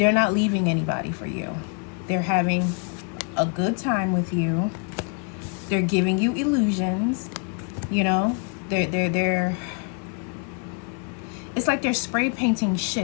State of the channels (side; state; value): right; quieter; 38.6 dB